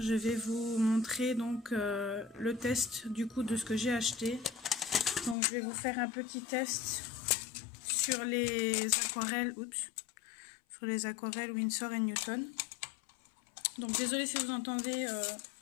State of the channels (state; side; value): drops out; right; at 5.4 s